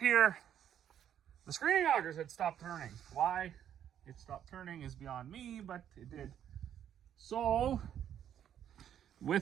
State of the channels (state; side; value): quieter; left; 9.9 dB